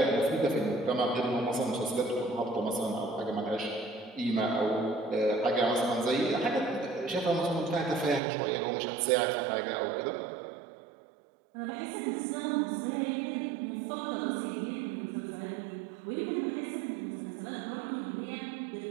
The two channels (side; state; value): left; drops out; at 8.2 s